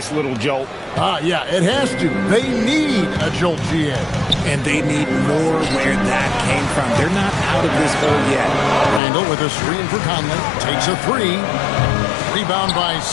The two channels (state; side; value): drops out; right; at 9.0 s